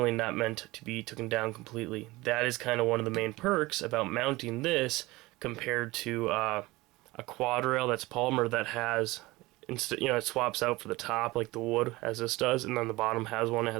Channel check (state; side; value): quieter; left; 20.7 dB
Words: not meant to be taken down completely. That is kind of one of the main perks about mounting this compared to a quad rail that's polymer that has, you know, it swaps out for the top like the wood as this does, and then the bottom has one that